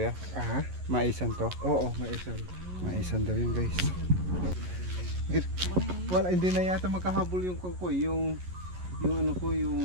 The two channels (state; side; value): late; left; 11 ms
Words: Aha. Maisan to? Oo, may isang. Maisan daw yun, guys. Wala, hindi na yata makahabol yung kangkoy. Yung ano ko,